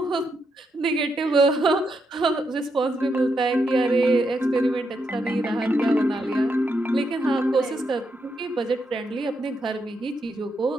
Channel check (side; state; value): both; normal; correlation 0.81